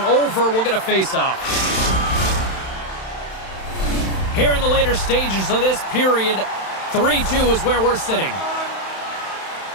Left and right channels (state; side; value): late; right; 31 ms